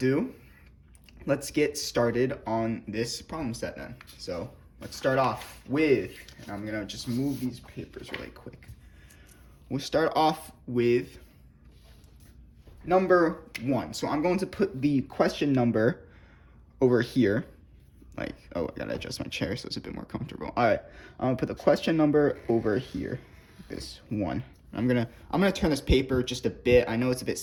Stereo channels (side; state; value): both; identical; correlation 1.00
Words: let's get started on this problem set then. So let's start off with, and I'm gonna just move these papers really quick. We'll start off with number 1. So I'm going to put the question number over here. I gotta adjust my chair so it's a bit more comfortable. All right, I'm gonna put the question number over here, this 1. I'm gonna turn this paper just a bit. I know it's a bit